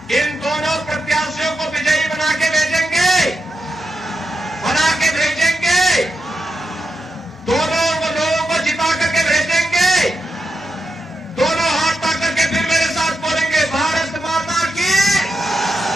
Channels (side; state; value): both; normal; correlation 0.86